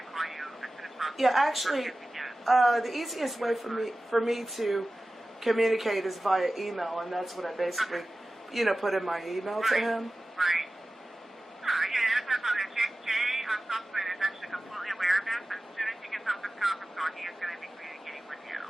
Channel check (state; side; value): normal; both; correlation 0.96